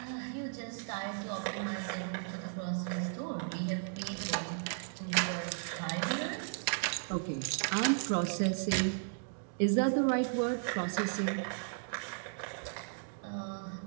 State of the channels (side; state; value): left; silent; digital silence